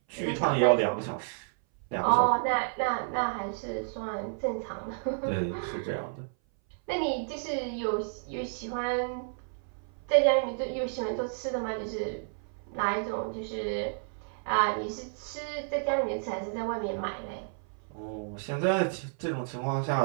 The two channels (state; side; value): silent; left; 57 dB below the other